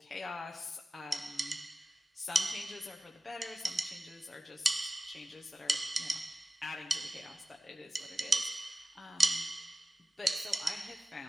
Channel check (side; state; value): both; normal; correlation 0.96